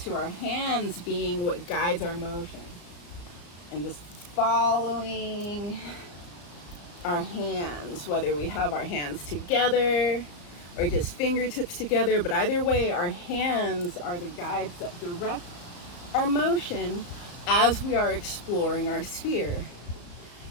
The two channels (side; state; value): right; late; 34 ms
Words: to our hands being what guides our motion. And just following our hands, whether we have our hands together or just fingertips together, but either way, our hands are the guides that direct our motion as we are exploring our sphere.